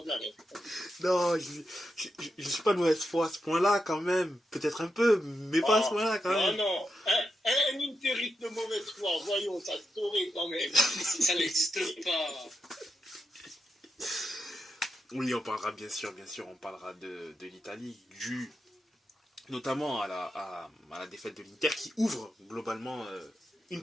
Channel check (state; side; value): normal; both; correlation 0.86